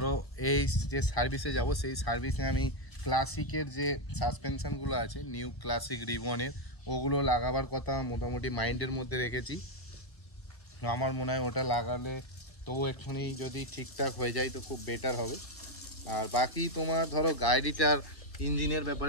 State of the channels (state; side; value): late; right; 1.3 ms